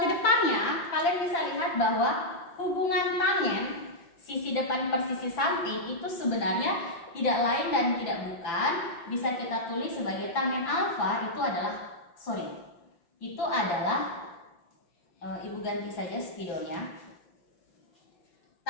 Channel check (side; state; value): right; late; 5.9 ms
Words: kedepannya kalian bisa lihat bahwa hubungan tangen sisi depan per sisi samping itu sebenarnya tidak lain dan tidak bukan, bisa kita tulis sebagai tangen alfa itu adalah ibu ganti saja spidolnya.